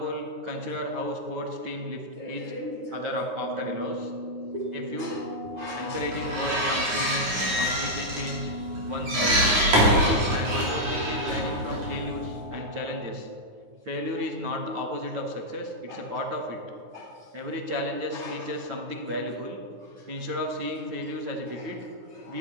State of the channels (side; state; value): left; late; 9.6 ms